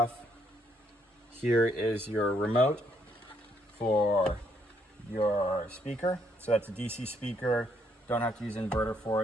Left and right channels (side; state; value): both; normal; correlation 0.72